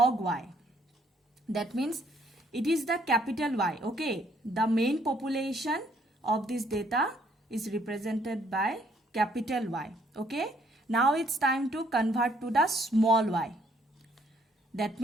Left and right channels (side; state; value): both; normal; correlation 0.66